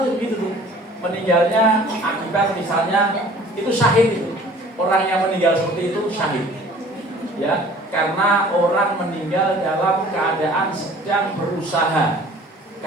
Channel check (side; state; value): both; normal; correlation 0.49